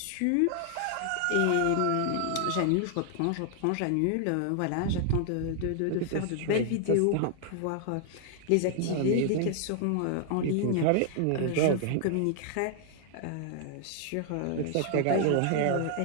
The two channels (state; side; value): different; both; correlation 0.00